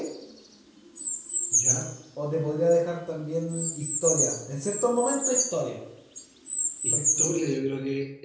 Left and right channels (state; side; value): identical; both; correlation 1.00